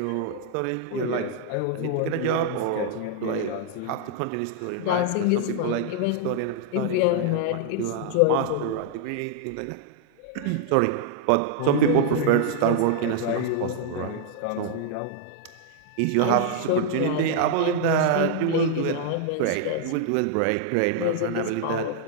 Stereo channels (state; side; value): different; both; correlation 0.00